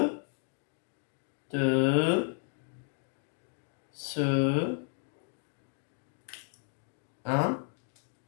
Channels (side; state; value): right; silent; 55 dB below the other